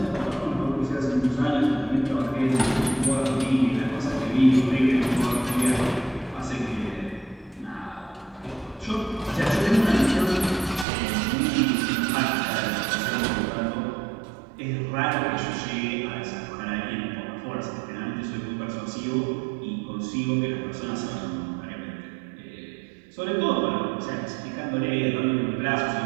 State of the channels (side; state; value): left; drops out; at 10.9 s